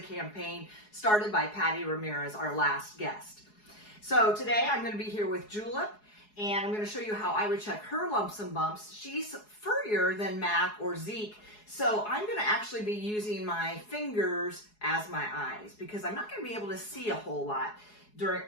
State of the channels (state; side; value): late; right; 4.8 ms